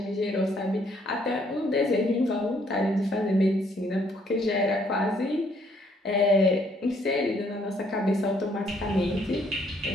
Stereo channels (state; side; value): normal; both; correlation 0.67